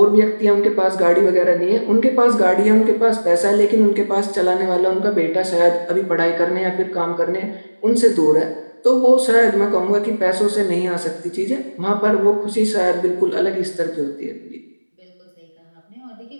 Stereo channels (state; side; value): inverted; both; correlation -1.00